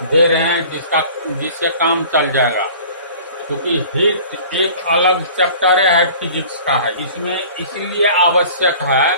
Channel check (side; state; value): both; inverted; correlation -0.45